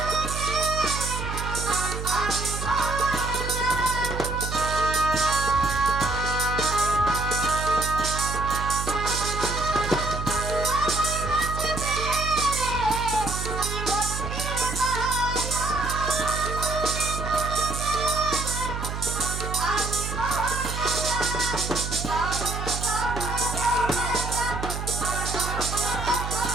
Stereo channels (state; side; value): noise; right; hum, 5 dB below the sound